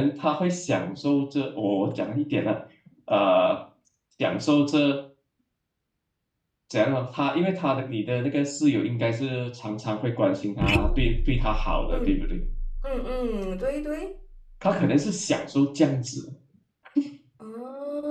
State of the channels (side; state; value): both; identical; correlation 1.00